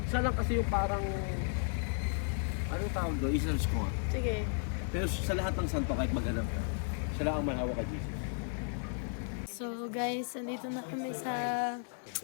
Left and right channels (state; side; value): silent; right; 55 dB below the other